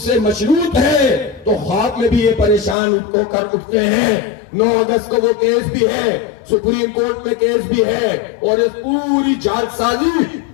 مشروط ہے. تو خواب میں بھی یہ پریشان ہو کر اٹھتے ہیں. 9 اگست کو وہ کیس بھی ہے, سپریم کورٹ میں کیس بھی ہے, اور اس پوری جال سازی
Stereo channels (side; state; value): right; drops out; at 2.8 s